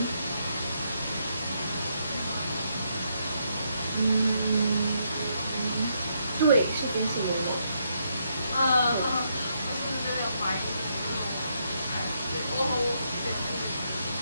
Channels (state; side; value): inverted; both; correlation -0.77